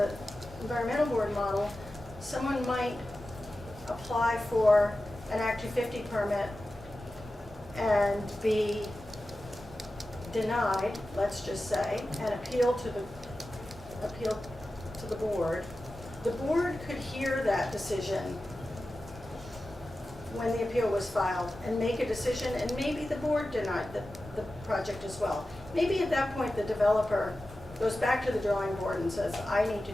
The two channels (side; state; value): both; normal; correlation 0.94